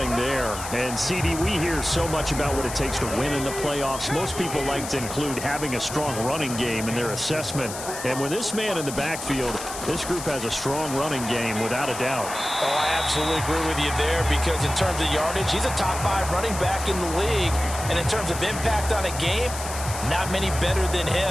there. And, CD, we hear so much about what it takes to win in the playoffs. Most people like to include having a strong running game in their assessment. And with this man in the backfield, this group has a strong running game without a doubt. Oh, I absolutely agree with you there because in terms of yardage, he's a top 5 running back in the league. And in terms of impact on a game, not many better than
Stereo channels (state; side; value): noise; left; hiss, 9 dB below the sound